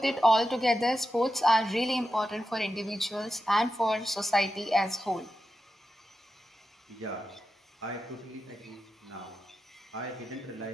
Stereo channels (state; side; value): normal; both; correlation 0.90